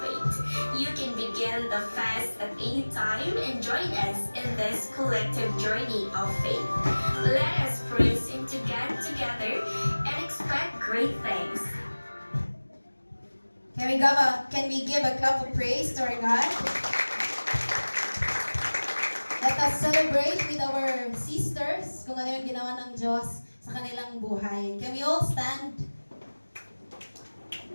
You can begin the fast at any time and join us in this collective journey of faith. Let us praise Him together and expect great things. Can we give a clap of praise to our God? Let us celebrate with our sisters kung ano yung ginawa ng Diyos sa kanilang buhay. Can we all stand?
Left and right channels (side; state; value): both; inverted; correlation -1.00